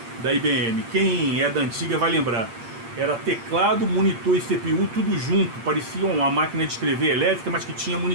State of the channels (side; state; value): left; late; 8.7 ms